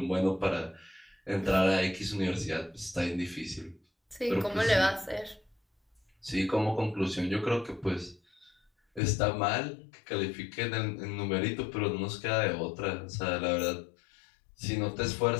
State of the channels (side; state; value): right; drops out; at 9.0 s